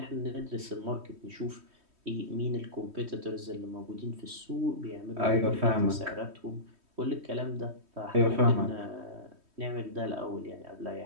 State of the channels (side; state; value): left; late; 3.1 ms